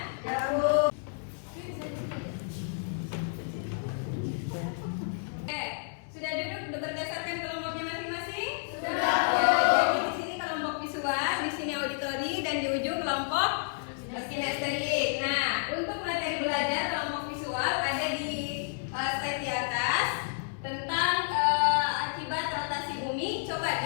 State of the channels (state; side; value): silent; right; 57 dB below the other